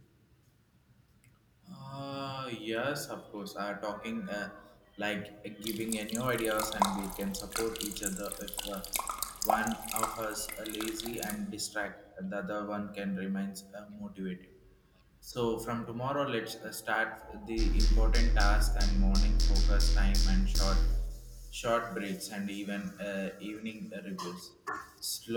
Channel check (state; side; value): identical; both; correlation 1.00